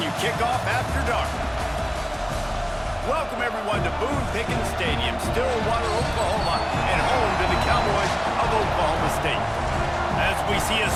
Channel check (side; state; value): both; identical; correlation 1.00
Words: you kick off after dark. Welcome everyone to Boone Pickens Stadium, Stillwater, Oklahoma, and home to the Cowboys of Oklahoma State. As we see a